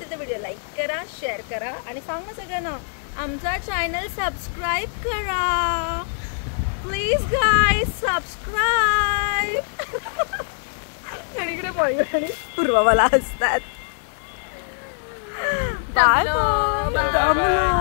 तर व्हिडिओ लाईक करा, शेअर करा आणि सांगा सगळ्यांना आमचा चॅनल सबस्क्राईब करा प्लीज गाईज, सबस्क्राईब। आणि इकडे मयूर आणि पूर्वा मला हसतात। Bye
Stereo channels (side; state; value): right; silent; digital silence